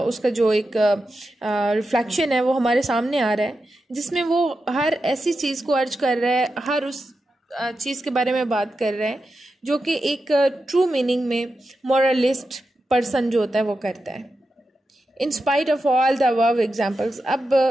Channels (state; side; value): normal; both; correlation 0.89